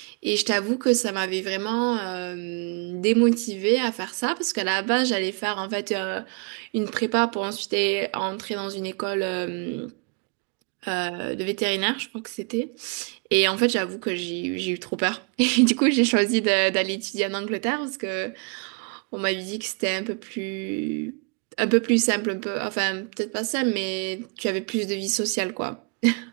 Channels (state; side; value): quieter; left; 34.9 dB